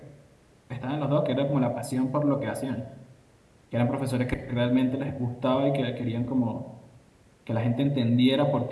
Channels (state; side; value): identical; both; correlation 1.00